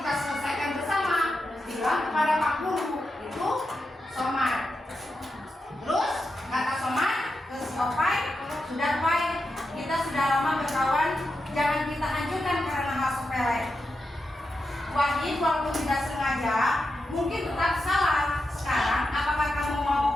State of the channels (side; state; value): both; normal; correlation 0.88